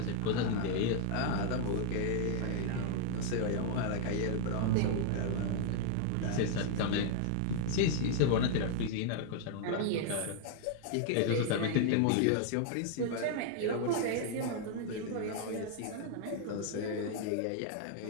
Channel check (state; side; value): different; both; correlation 0.00